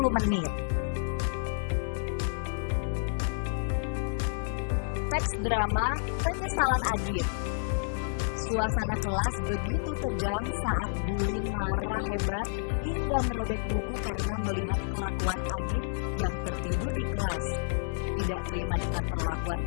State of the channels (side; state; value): right; silent; digital silence